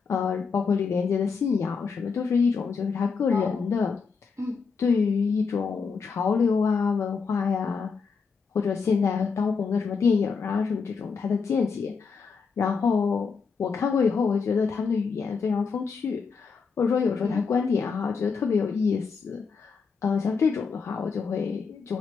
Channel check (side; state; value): right; quieter; 5.3 dB